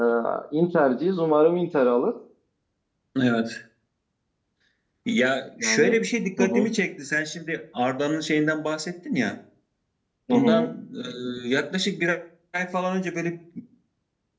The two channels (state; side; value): identical; both; correlation 1.00